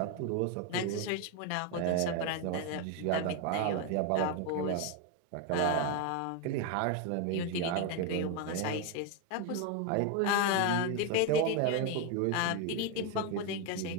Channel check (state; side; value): different; both; correlation 0.02